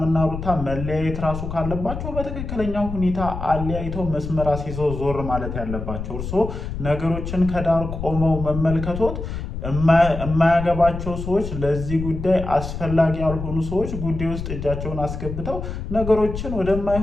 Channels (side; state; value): left; noise; rumble, 7 dB below the sound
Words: ሩታ መለያየት ራሱ ካለባቸው በትክክለኛው ሁኔታ አለያይተው መስመር አስይዘው ዞር ማለት ያለባቸው። እርስዎ ነገሮችን ከዳር ቆመው መመልከቶት የማያገባቸው ሰዎች፣ ለዚህ ጉዳይ አስፈላጊ ያልሆኑ ሰዎች ጉዳይ ውስጥ እጃቸውን አስገብተው ነገሮችን